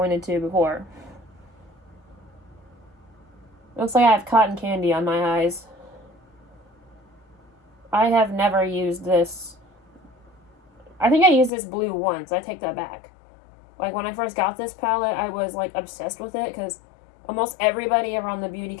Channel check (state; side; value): drops out; right; at 11.5 s